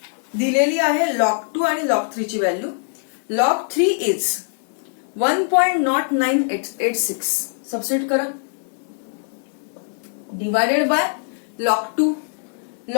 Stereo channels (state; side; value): silent; right; digital silence